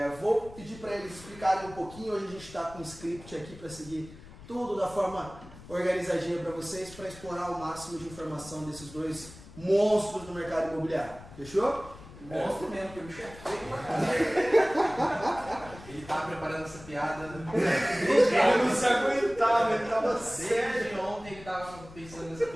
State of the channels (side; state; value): left; noise; rumble, 18 dB below the sound